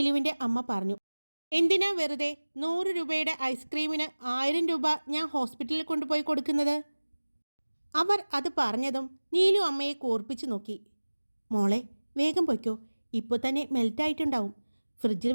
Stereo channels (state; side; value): inverted; both; correlation -1.00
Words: അമ്മ പറഞ്ഞു. എന്തിനാ വെറുതെ 100 രൂപയുടെ ഐസ്ക്രീമിന് 1000 രൂപ ഞാൻ ഹോസ്പിറ്റലിൽ കൊണ്ടുപോയി കൊടുക്കുന്നത്? അവർ അത് പറഞ്ഞതും നീലു അമ്മയെ കൂർപ്പിച്ചു നോക്കി. മോളെ, വേഗം പൊയ്ക്കോ, ഇപ്പോൾ തന്നെ മെൽറ്റായിട്ടുണ്ടാവും. ഫ്രിഡ്ജിൽ